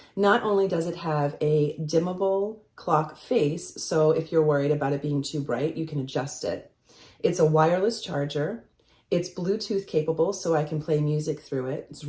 Not only does it have a dimmable clock face, so if you're worried about it being too bright, you can adjust it. It's a wireless charger. It's Bluetooth capable, so I can play music through it. It's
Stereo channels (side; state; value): both; identical; correlation 1.00